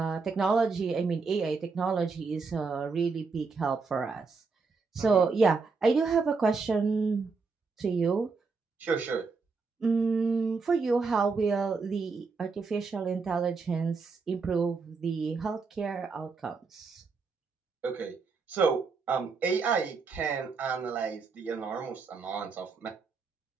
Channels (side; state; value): left; quieter; 4.6 dB